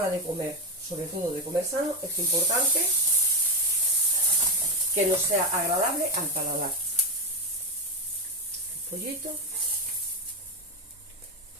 de comer, sobre todo de comer sano, es importante que nos sea agradable al paladar. Pollito,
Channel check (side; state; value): both; normal; correlation 0.12